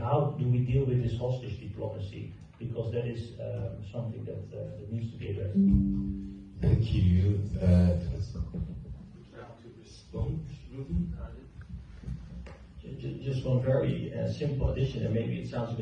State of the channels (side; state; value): both; identical; correlation 1.00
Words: do we deal with this hostage diplomacy? Because that is something that needs to be addressed. Thank you. To respond. Just one very simple addition, and maybe it sounds a